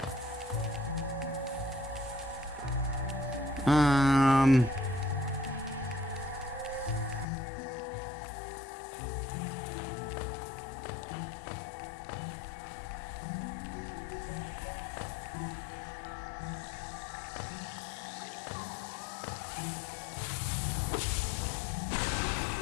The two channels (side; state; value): right; drops out; at 7.2 s